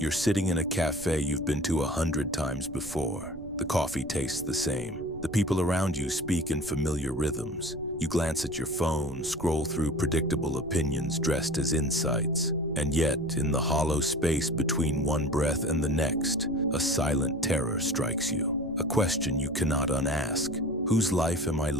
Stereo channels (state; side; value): noise; right; rumble, 17 dB below the sound